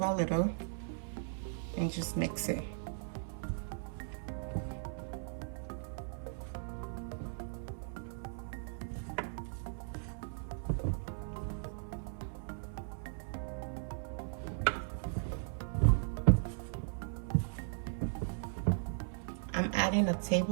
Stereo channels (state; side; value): silent; left; 53 dB below the other